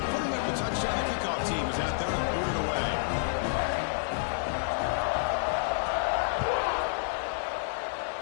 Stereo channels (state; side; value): silent; right; digital silence